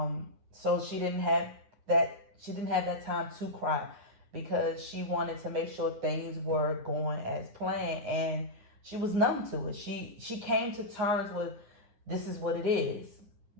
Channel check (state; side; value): late; left; 9.8 ms